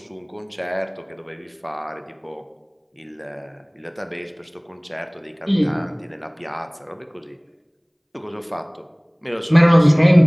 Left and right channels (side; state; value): both; identical; correlation 1.00